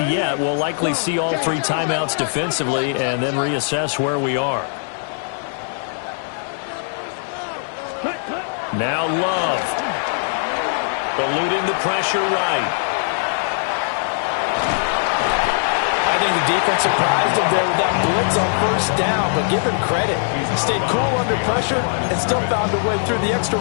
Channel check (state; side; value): silent; right; digital silence